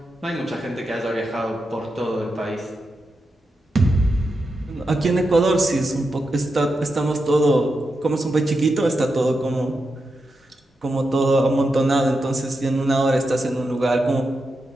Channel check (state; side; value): normal; both; correlation 0.87